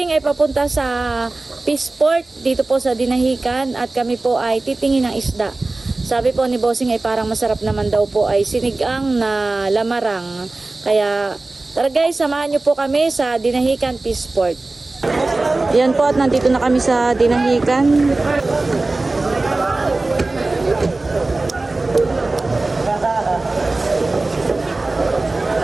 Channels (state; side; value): quieter; left; 3.2 dB